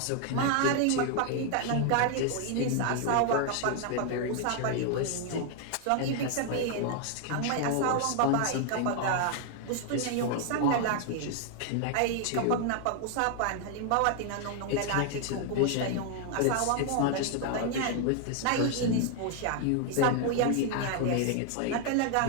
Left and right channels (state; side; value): different; both; correlation 0.00